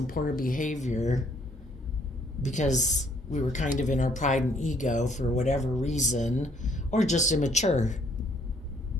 poor behavior because we were kind of in our pride and ego for whatever reason, or just immature.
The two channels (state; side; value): normal; both; correlation 0.65